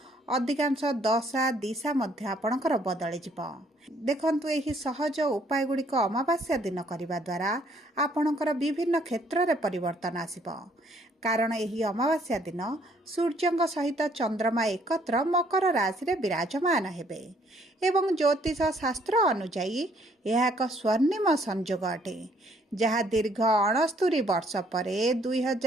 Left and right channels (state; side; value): normal; both; correlation 0.64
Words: अधिकांश दशा दिशा मध्य आपणकर बदली जिब। देखंतु एही सहज उपाय गुड़िक अमावास्या दिन करिबा द्वारा आपणकर विभिन्न क्षेत्र रे परिवर्तन आसिब। कारण एही अमावास्या दिन सूर्यंक सहित चंद्रमा एकत्र मकर राशि रे विराजमान हेबे एवं ज्योतिष शास्त्र अनुसायी यह एक स्वर्णिम संयोग अटे जहाँ दीर्घ 69 वर्ष पर